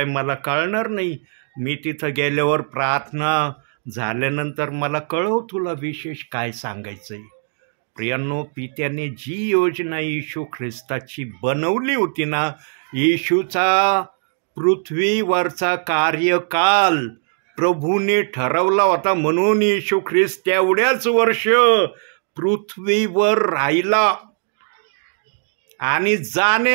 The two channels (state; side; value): silent; left; digital silence